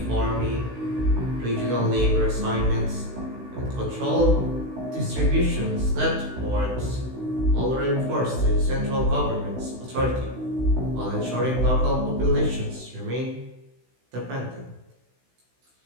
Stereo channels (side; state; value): left; late; 16 ms